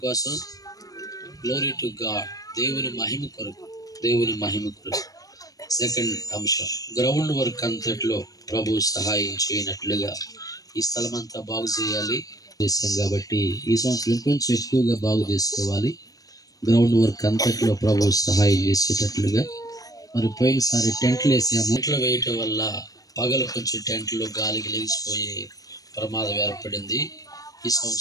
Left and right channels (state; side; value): late; right; 0.18 ms